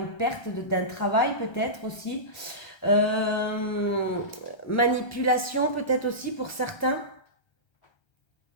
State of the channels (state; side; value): late; right; 1.3 ms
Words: perte d'un travail, peut-être aussi. Manipulation, peut-être aussi pour certains.